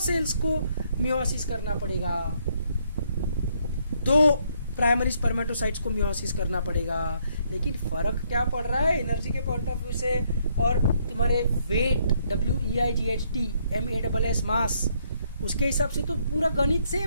सेल्स को मियोसिस करना पड़ेगा, 2 प्राइमरी स्पर्मेटोसाइट्स को मियोसिस करना पड़ेगा। लेकिन फर्क क्या पड़ रहा है एनर्जी के पॉइंट ऑफ व्यू से, और तुम्हारे वेट WEIGHT MASS मास, उसके हिसाब से तो पूरा गणित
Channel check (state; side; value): inverted; both; correlation -0.71